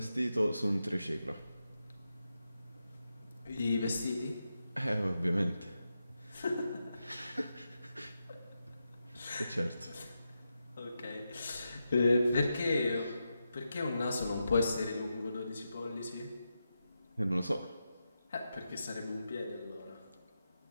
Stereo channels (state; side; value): inverted; both; correlation -0.88